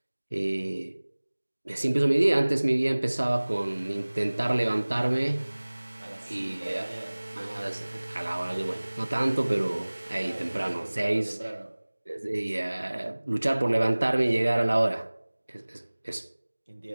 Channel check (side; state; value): both; inverted; correlation -1.00